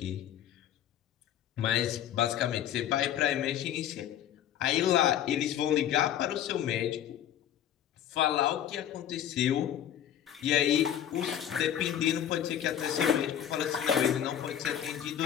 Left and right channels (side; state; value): right; quieter; 10.4 dB